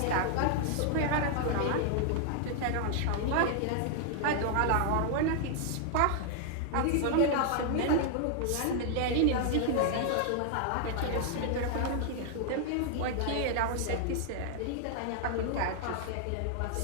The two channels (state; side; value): different; both; correlation 0.00